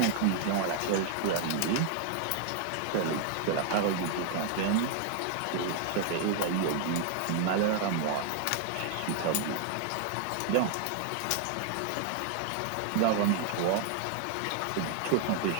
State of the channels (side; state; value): both; different; correlation 0.00